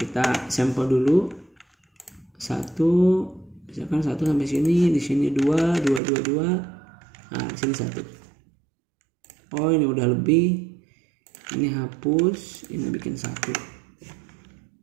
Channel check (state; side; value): drops out; left; at 6.0 s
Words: sampel dulu. 1 misalkan 1 sampai sini, di sini 2, nah di sini 1. Oh ini udah lebih, ini hapus, ini bikin 1.